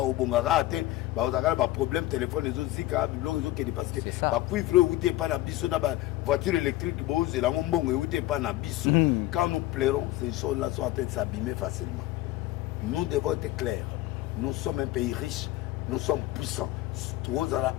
problème téléphone les autres parce que voiture électrique quand nous plairons ces choses-là sont en train de s'abîmer facilement. Nous devons être clairs. Nous sommes un pays riche, nous sommes puissants.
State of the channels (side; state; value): right; quieter; 16.6 dB